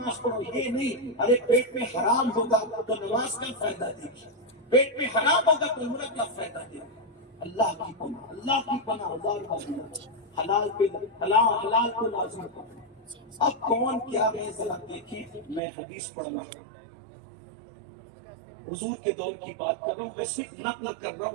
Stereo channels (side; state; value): left; drops out; at 15.6 s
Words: پڑھو، یہ نہیں۔ ارے پیٹ میں حرام ہوگا تو نماز کا فائدہ دے گی، پیٹ میں حرام ہوگا تو عمرہ کا فائدہ دے گی۔ اللہ کی پناہ، اللہ کی پناہ، حلال پہ حلال کو لازم کرو۔ اب کون کیا ہے ذرا دیکھیں، میں حدیث پڑھ رہا ہوں، حضور کے دور کی بات کر رہا ہوں، میں صرف نقل کر رہا